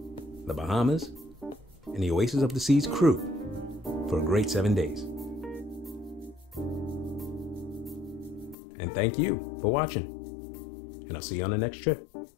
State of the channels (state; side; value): drops out; right; at 8.6 s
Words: the Bahamas, and the Oasis of the Seas crew for a great 7 days. And thank you for watching. And I'll see you on the next trip. I